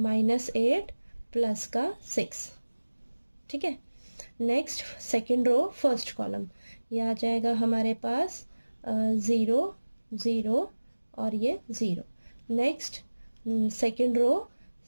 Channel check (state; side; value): inverted; both; correlation -1.00